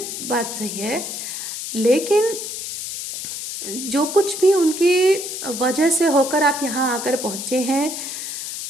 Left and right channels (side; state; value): left; noise; hiss, 6 dB below the sound